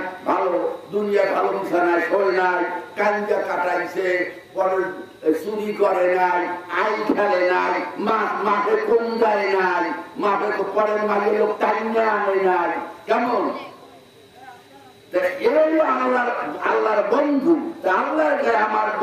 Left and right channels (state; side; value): identical; both; correlation 1.00